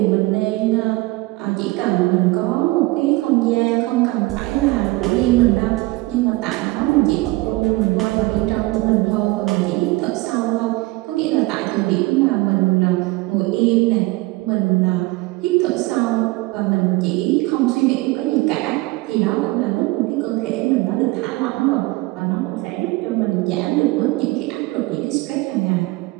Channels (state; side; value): quieter; left; 21.7 dB